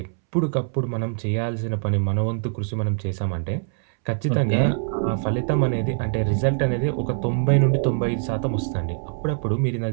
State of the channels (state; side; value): silent; left; 63 dB below the other